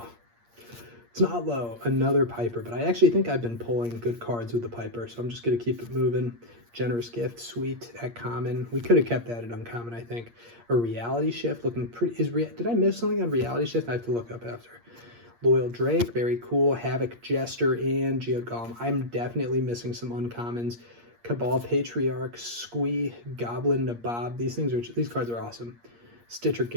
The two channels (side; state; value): left; late; 8.6 ms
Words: It's not low. Another Piper, but I actually think I've been pulling good cards with the Piper, so I'm just going to keep it moving. Generous Gift, sweet at common. We could have kept that at uncommon, I think. A Reality Shift, looking pretty. Did I miss something on Reality Shift? I have to look up after. Loyal Drake, very cool. Havoc Jester and Geode Golem. I'm definitely missing some uncommons. Cabal Patriarch, Squee, Goblin Nabob. These cards are awesome. Stitcher